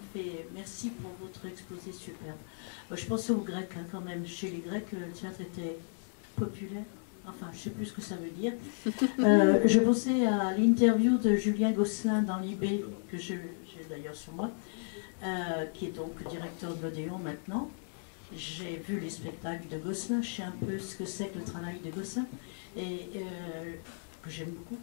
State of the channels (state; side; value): silent; right; 55 dB below the other